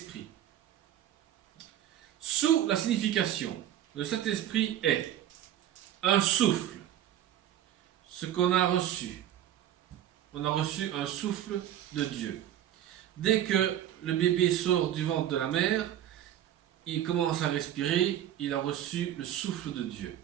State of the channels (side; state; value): left; quieter; 11.4 dB